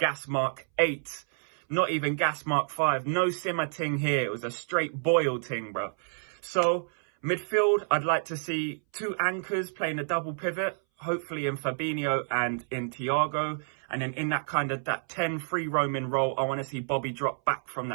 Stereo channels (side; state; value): left; silent; 59 dB below the other